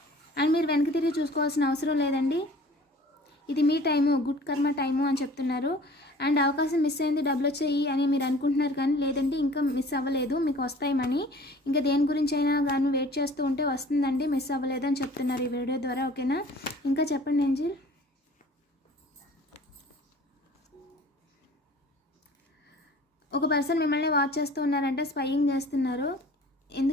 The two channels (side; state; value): both; normal; correlation 0.48